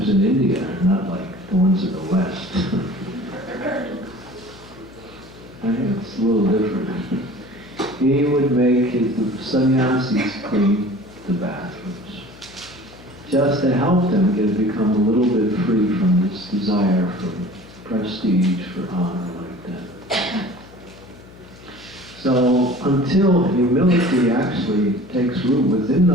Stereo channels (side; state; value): left; noise; hum, 21 dB below the sound